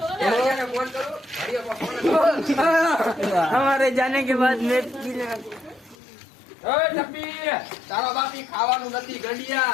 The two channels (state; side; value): drops out; right; at 6.0 s